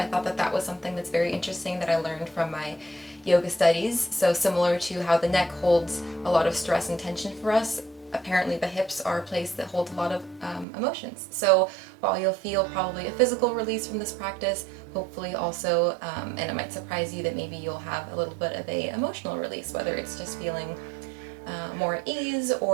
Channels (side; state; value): left; drops out; at 10.7 s